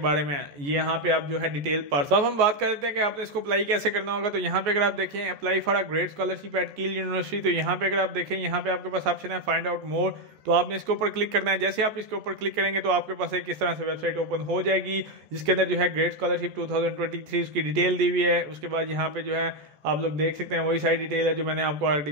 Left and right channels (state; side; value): late; left; 14 ms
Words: में, ये यहाँ पे आप जो है डिटेल पढ़। तो अब हम बात कर लेते हैं कि आपने इसको अप्लाई कैसे करना होगा। तो यहाँ पे अगर आप देखें apply for a great scholarship eight कील यूनिवर्सिटी, तो यहाँ पे अगर आप देखें यहाँ पे आपके पास ऑप्शन है फाइंड आउट मोर, तो आपने इसके ऊपर क्लिक करना है। जैसे आप इसके ऊपर क्लिक करेंगे तो आपके पास एक इस तरह से वेबसाइट ओपन हो जाएगी, जिसके अंदर जो है ग्रेट स्कॉलरशिप 2023 उसकी डिटेल दी हुई है। उसके बाद यहाँ पे जो है आप लोग देख सकते हैं वही सारी डिटेल है जो मैंने आपको ऑलरेडी